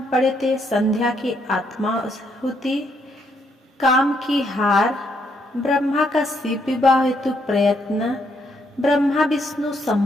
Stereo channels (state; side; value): normal; both; correlation 0.74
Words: पढ़े थे संध्या की आत्माहुति, काम की हार, ब्रह्मा का शिव विवाह हेतु प्रयत्न, ब्रह्मा विष्णु